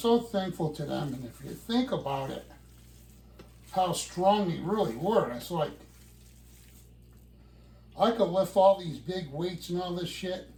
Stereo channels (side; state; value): both; identical; correlation 1.00